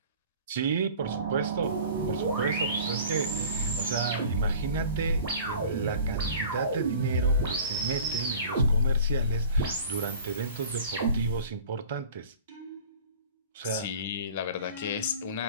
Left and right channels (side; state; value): both; inverted; correlation -0.43